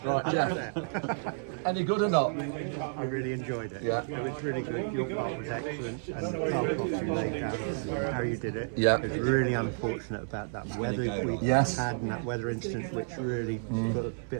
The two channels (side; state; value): left; silent; 57 dB below the other